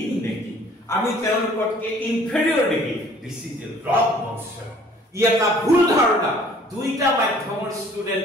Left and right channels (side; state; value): both; normal; correlation 0.55